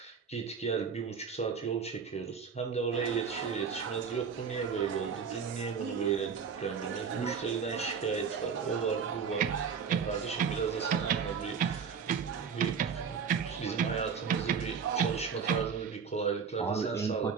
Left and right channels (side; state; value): left; quieter; 6.4 dB